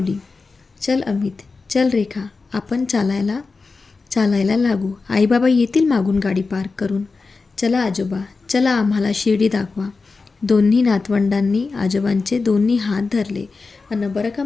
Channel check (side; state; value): right; quieter; 4.2 dB